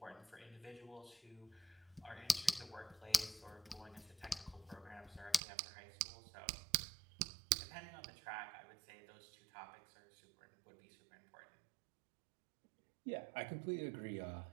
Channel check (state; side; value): drops out; left; at 5.4 s